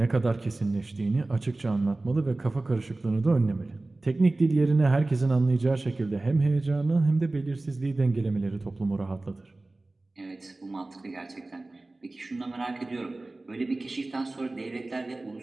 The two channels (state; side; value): quieter; left; 3.0 dB